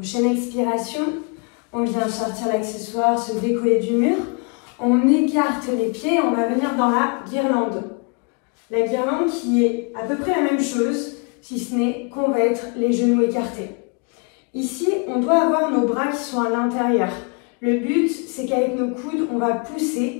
expiration, on vient sortir l'accessoire, se décoller du mur. On écarte les pieds, on va venir dans la guirlande. La guirlande qui est à peu près la même chose, si ce n'est qu'on va être les genoux écartés. Ici, on doit avoir nos bras qui sont à l'intérieur. Le but, c'est qu'avec nos coudes, on va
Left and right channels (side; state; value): right; quieter; 36.1 dB